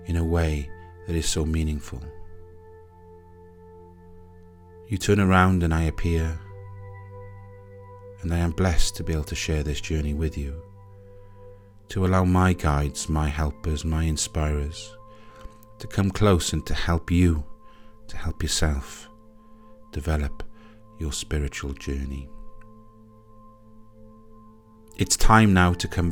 in a way that is so meaningful. You turn around and I appear, and I am blessed to be able to share this journey with you, to allow my guides, my helpers, my inspirers to come close and to help you, to help yourself develop your spiritual journey. It's time now to come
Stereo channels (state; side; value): identical; both; correlation 1.00